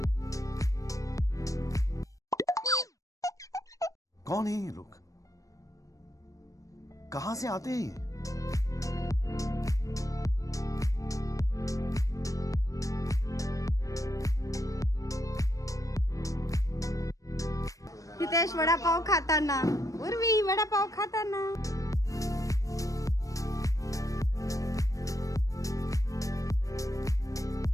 कौन है ये लोग? कहां से आते हैं ये? हितेश वडापाव खाताना, उर्वी वडापाव खाताना.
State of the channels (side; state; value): right; late; 0.16 ms